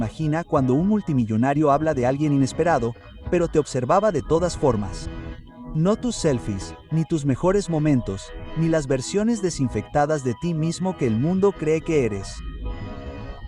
cuando un multimillonario habla de alguien inesperado, pero te observaba de todas formas. No tus selfies, ni tus mejores momentos, ni las versiones desinfectadas de ti mismo que el mundo cree que eres.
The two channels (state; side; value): identical; both; correlation 1.00